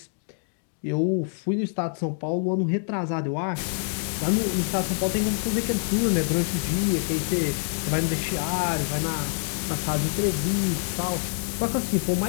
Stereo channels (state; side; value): silent; right; digital silence